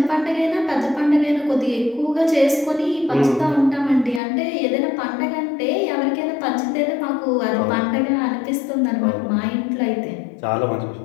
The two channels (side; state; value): right; drops out; at 4.2 s